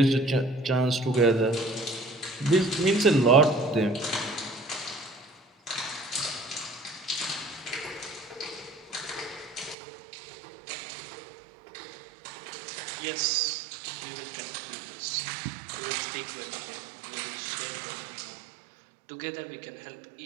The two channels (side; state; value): left; drops out; at 9.8 s